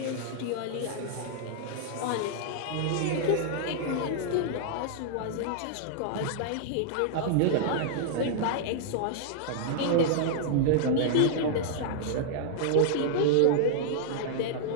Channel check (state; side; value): different; both; correlation -0.01